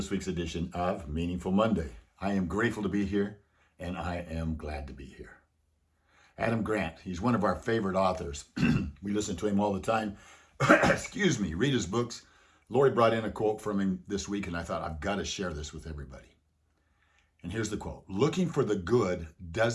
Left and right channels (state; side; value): identical; both; correlation 1.00